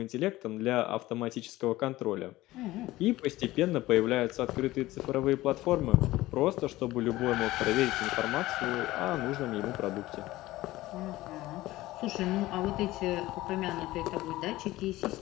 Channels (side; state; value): right; quieter; 17.4 dB